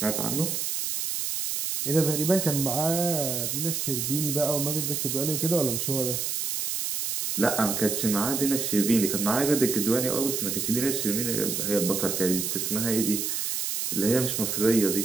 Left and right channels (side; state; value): right; noise; hiss, 1 dB below the sound